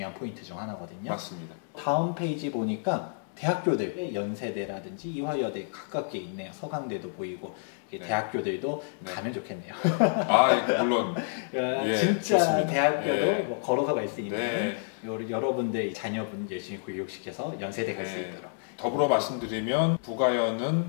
포인트 중 하나거든요. 맞습니다. 다음 페이지 보니까 대학교들 연세대라든지 이화여대 가깝게 있네요. 서강대도 보이고 네. 대학교들도 네. 가면 좋겠네요. 아, 물론. 예, 진짜 좋습니다. 대학교도 예. 뭐 걸어서 갈 수 있는 네. 여러분들 자녀분 열심히 교육시켜서 연세대 갈 수 네. 있도록. 더불어 말씀드리면 부가현은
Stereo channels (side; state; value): right; silent; digital silence